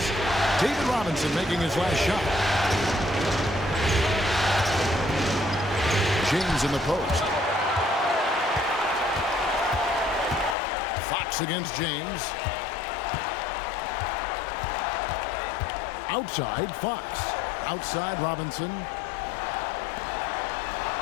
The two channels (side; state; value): right; drops out; at 10.6 s